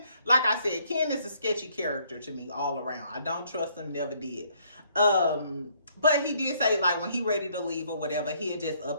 like I said, Ken is a sketchy character to me all around. I don't trust him, never did. But he did say like when he ready to leave or whatever, he'll just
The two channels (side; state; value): both; inverted; correlation -0.67